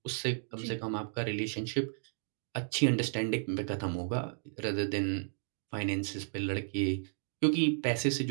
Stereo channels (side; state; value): left; silent; digital silence